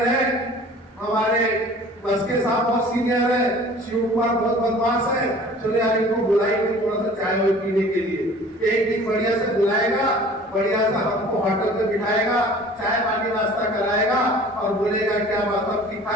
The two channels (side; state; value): both; normal; correlation 0.47